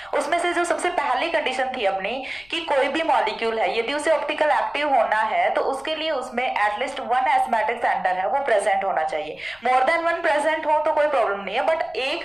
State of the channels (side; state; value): left; noise; rumble, 28 dB below the sound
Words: उसमें से जो सबसे पहली कंडीशन थी अपनी कि कोई भी मॉलिक्यूल है यदि उसे ऑप्टिकल एक्टिव होना है तो उसके लिए उसमें एटलीस्ट वन एस्मेटिक सेंटर है वो प्रेजेंट होना चाहिए। मोर देन वन प्रेजेंट हो तो कोई प्रॉब्लम नहीं है, बट